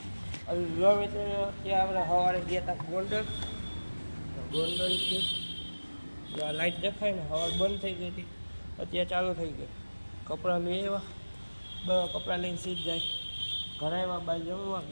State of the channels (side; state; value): both; inverted; correlation -1.00